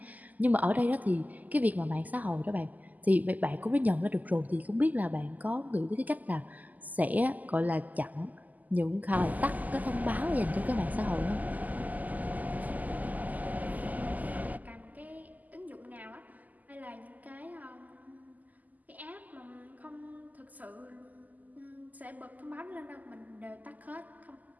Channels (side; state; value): left; late; 0.080 ms